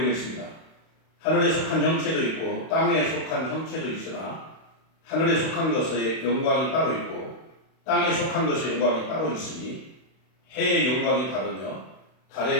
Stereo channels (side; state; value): right; late; 31 ms